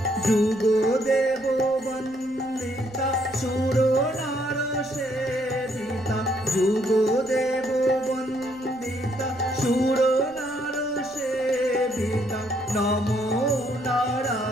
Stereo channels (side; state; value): right; noise; rumble, 25 dB below the sound